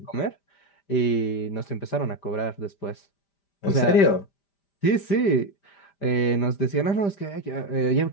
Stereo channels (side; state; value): right; late; 5.0 ms